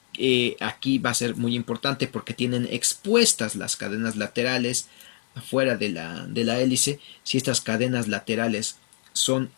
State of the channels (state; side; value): silent; right; 62 dB below the other